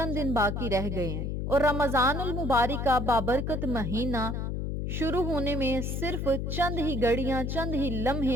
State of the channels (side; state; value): left; noise; hum, 2 dB below the sound